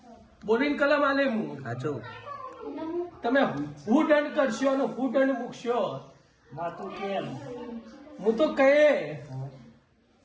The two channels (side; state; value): both; identical; correlation 1.00